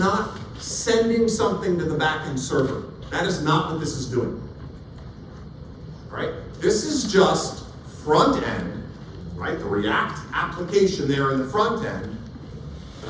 sending something to the backend server. That is not what this is doing. Right? This is just front end, right? The React application there in the front end,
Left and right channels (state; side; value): identical; both; correlation 1.00